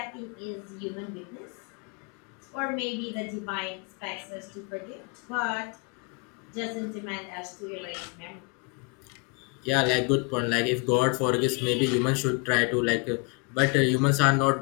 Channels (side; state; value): right; quieter; 31.0 dB